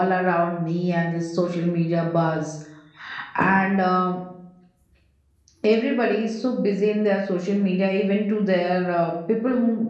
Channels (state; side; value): identical; both; correlation 1.00